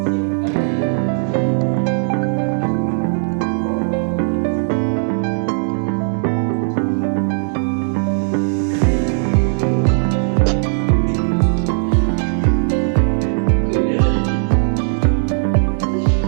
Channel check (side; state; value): left; silent; digital silence